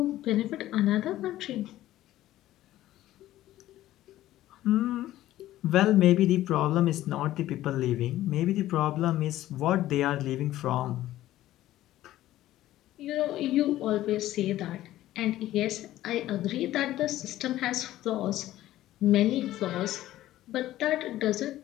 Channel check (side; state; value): right; quieter; 14.5 dB